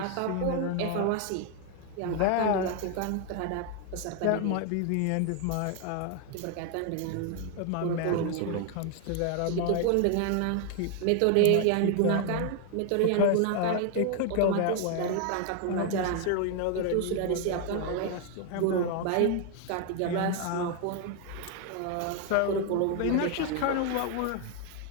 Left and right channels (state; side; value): different; both; correlation 0.01